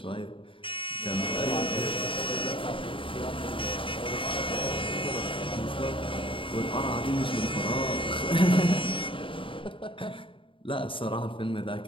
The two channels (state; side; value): late; right; 0.25 ms